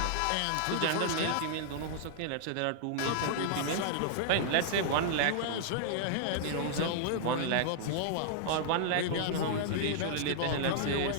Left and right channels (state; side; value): different; both; correlation -0.01